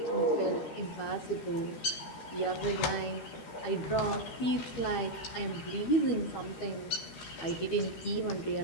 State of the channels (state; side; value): late; right; 13 ms